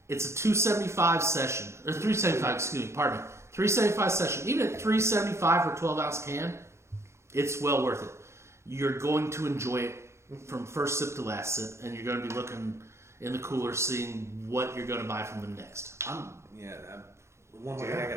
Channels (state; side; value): late; left; 0.13 ms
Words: It's a 275 session, or 375. Excuse me. Pardon me. 375 session. Even at 375 for a 12-ounce can, it's well worth it. You're going to enjoy it from first sip to last sip, and you're going to be looking in the cooler, seeing what you're going to buy from them next. One more thing I